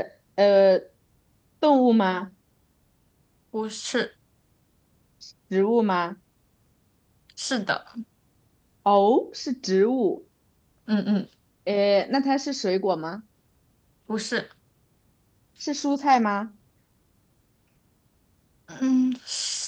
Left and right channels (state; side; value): identical; both; correlation 1.00